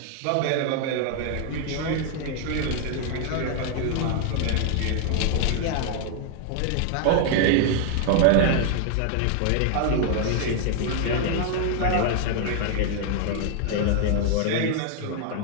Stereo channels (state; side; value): different; both; correlation 0.00